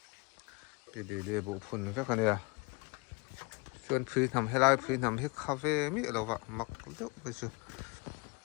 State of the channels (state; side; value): quieter; right; 28.6 dB